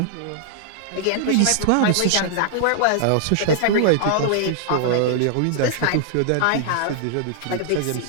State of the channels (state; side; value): different; both; correlation -0.01